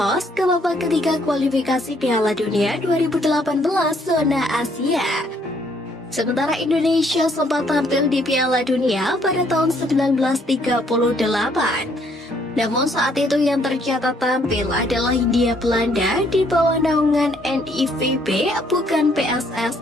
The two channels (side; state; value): both; normal; correlation 0.67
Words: ke babak ketiga kualifikasi Piala Dunia 2018 zona Asia. Sementara Indonesia sempat tampil di Piala Dunia pada tahun 1938. Namun saat itu yang tercatat tampil adalah Hindia Belanda di bawah naungan NIVB, bukan